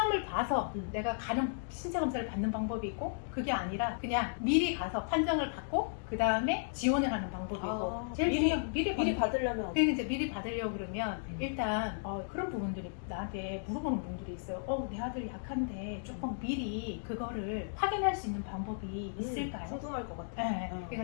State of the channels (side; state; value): right; silent; digital silence